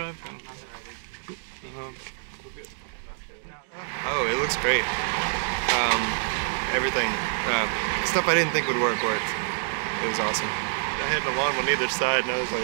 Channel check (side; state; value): left; silent; digital silence